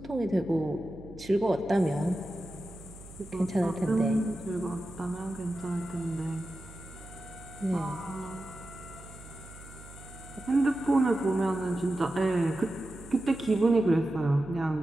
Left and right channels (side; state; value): right; noise; hum, 17 dB below the sound